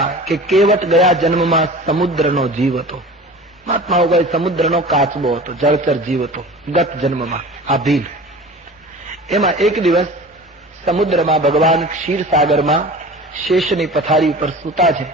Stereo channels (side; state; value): both; normal; correlation 0.38